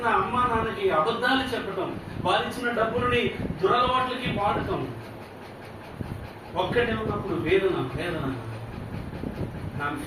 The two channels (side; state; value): both; identical; correlation 1.00